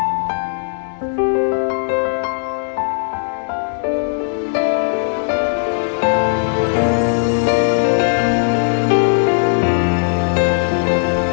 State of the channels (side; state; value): right; silent; digital silence